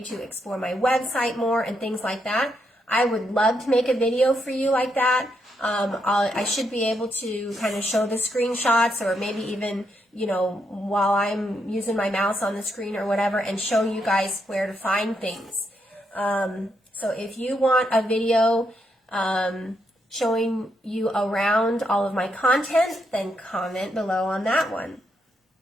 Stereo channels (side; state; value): both; normal; correlation 0.79